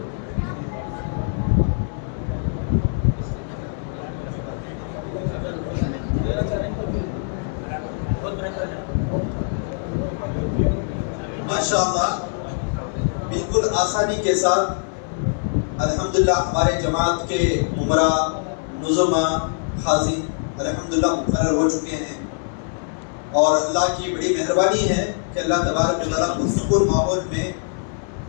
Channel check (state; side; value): silent; right; 64 dB below the other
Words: ماشاءاللہ بالکل آسانی کے ساتھ الحمدللہ ہمارے جماعت کے عمرہ نظما حاضر الحمدللہ مقرر ہو چکے ہیں، اور اللہ کی بڑی مہربانی ہے کہ اللہ تبارک و تعالیٰ پرسکون ماحول میں